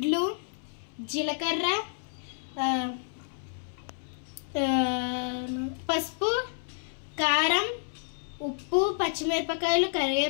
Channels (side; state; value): right; silent; 58 dB below the other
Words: జీలకర్ర, పసుపు, కారం, ఉప్పు, పచ్చిమిరపకాయలు,